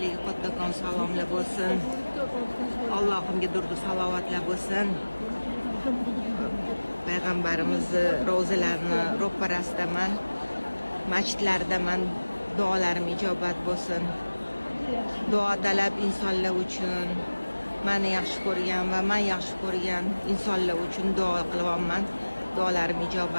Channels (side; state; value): both; inverted; correlation -1.00